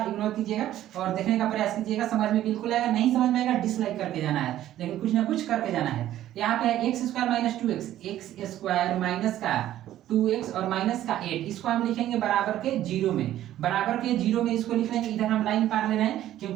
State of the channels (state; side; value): quieter; left; 12.9 dB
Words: इग्नोर कीजिएगा और देखने का प्रयास कीजिएगा। समझ में बिल्कुल आएगा, नहीं समझ में आएगा डिसलाइक करके जाना है, लेकिन कुछ ना कुछ करके जाना है। यहाँ पे है x square minus 2x, x square minus का 2x और माइनस का 8, इसको हम लिखेंगे बराबर के 0 में। बराबर के 0 में इसको लिख लेंगे। इधर हम लाइन पार ले रहे हैं